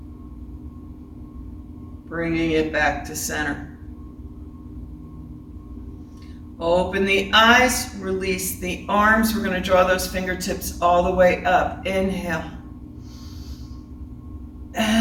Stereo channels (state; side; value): identical; both; correlation 1.00